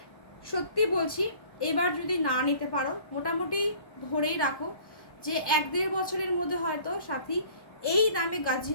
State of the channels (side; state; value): right; late; 1.1 ms